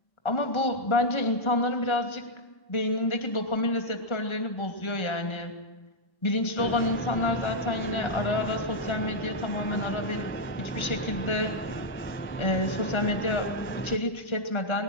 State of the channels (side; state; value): right; late; 1.4 ms